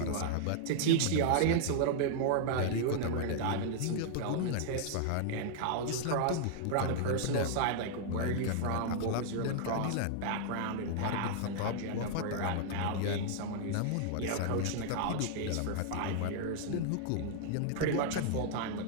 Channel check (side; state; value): both; different; correlation -0.01